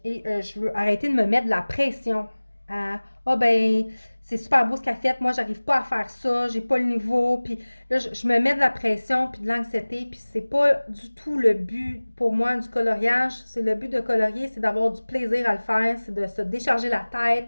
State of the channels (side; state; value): both; inverted; correlation -1.00